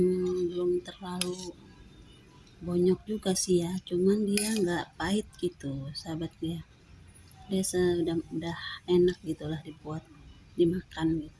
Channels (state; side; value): identical; both; correlation 1.00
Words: terlalu bonyok juga sih ya, cuman dia nggak pahit gitu sahabat ya. Dia udah enak gitulah dibuat dimakan